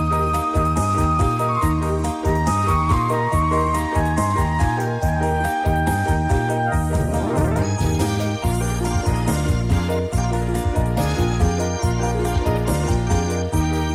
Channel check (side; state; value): both; identical; correlation 1.00